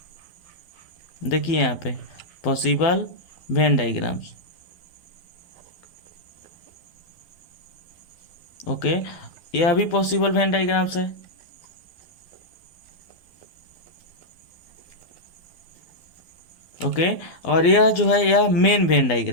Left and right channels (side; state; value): right; late; 12 ms